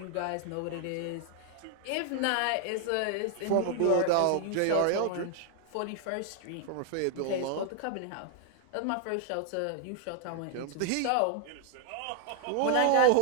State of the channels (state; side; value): different; both; correlation 0.00